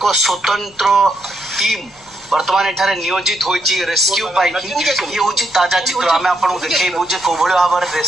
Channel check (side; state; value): left; noise; rumble, 30 dB below the sound